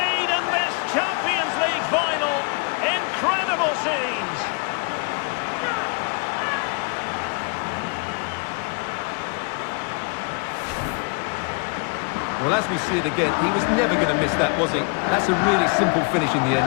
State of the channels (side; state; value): right; quieter; 34.6 dB